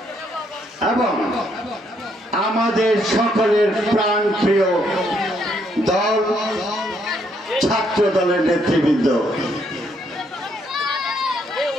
এবং আমাদের সকলের প্রাণ প্রিয় দল ছাত্র দলের নেতৃবৃন্দ,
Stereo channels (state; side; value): normal; both; correlation 0.72